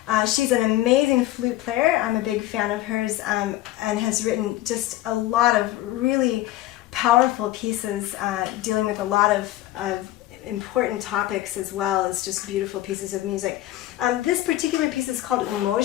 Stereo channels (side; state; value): right; quieter; 15.3 dB